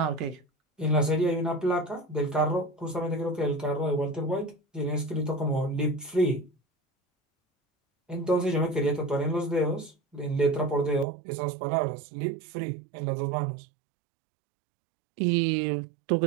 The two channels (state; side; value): drops out; left; at 11.1 s